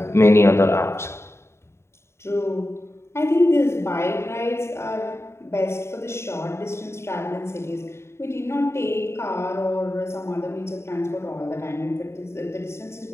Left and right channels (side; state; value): right; late; 0.13 ms